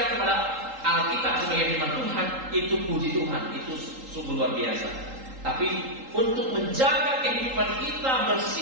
kepada Alkitab sebagai firman Tuhan, itu puji Tuhan, itu sungguh luar biasa. Tapi untuk menjaga kehidupan kita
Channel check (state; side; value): late; left; 3.8 ms